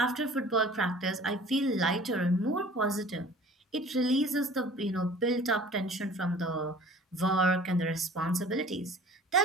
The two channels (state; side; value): normal; both; correlation 0.47